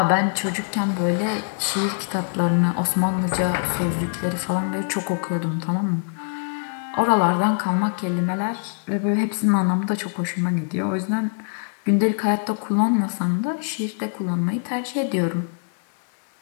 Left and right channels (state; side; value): silent; right; 63 dB below the other